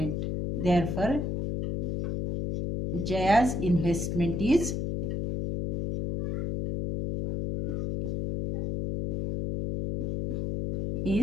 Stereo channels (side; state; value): left; noise; hum, 2 dB below the sound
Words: Therefore Jaya's investment is